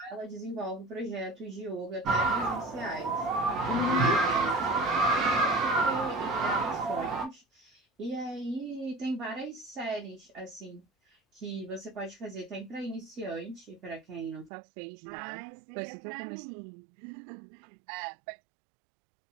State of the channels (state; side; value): drops out; left; at 14.5 s